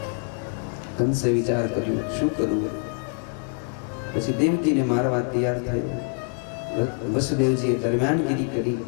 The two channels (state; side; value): quieter; right; 36.5 dB